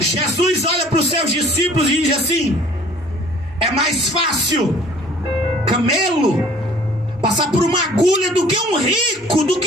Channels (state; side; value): normal; both; correlation 0.52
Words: olha para os seus discípulos e diz assim: é mais fácil camelo passar por uma agulha do que um rico, do